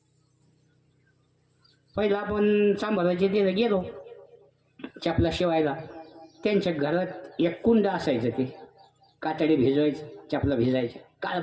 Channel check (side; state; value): both; identical; correlation 1.00